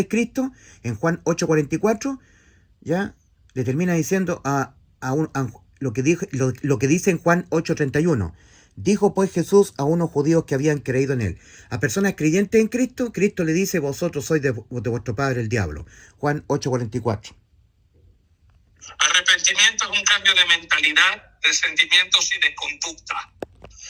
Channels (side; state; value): both; identical; correlation 1.00